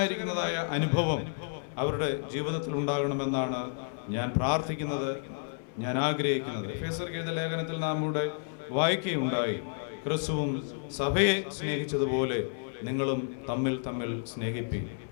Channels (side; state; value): right; silent; digital silence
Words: അനുഭവം അവരുടെ ജീവിതത്തിൽ ഉണ്ടാകണമെന്നാണ് ഞാൻ പ്രാർത്ഥിക്കുന്നത്, ഞാൻ ആഗ്രഹിക്കുന്നത്. എഫേസ്യർക്കെഴുത ലേഖനത്തിൽ നാം ഇവിടെ വായിക്കുകയുണ്ടായി, ക്രിസ്തുവും സഭയെ സ്നേഹിച്ചതുപോലെ നിങ്ങളും തമ്മിൽ തമ്മിൽ സ്നേഹിപ്പിക്കും.